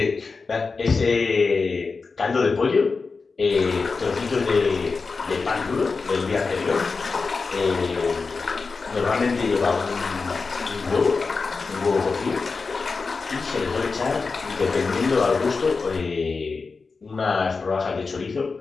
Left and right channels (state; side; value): quieter; right; 4.4 dB